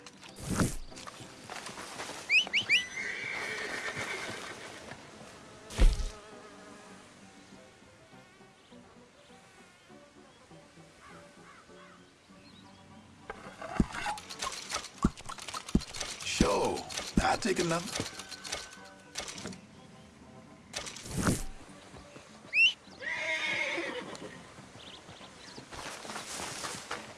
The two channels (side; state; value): both; identical; correlation 1.00